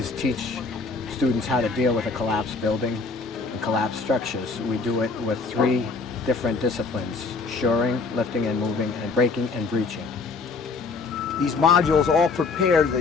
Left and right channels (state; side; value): quieter; right; 4.3 dB